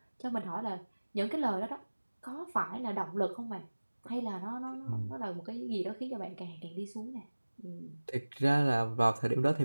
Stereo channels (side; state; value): both; inverted; correlation -1.00